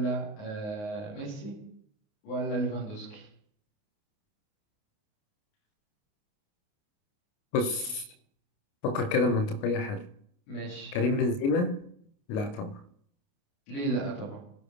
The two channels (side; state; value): right; late; 29 ms